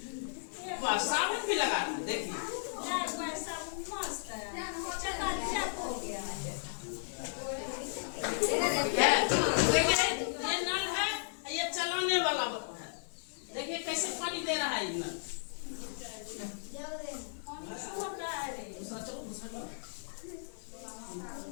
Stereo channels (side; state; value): right; silent; 54 dB below the other